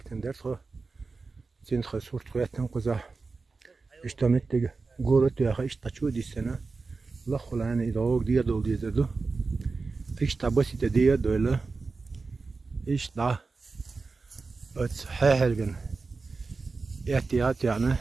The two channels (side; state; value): left; quieter; 4.1 dB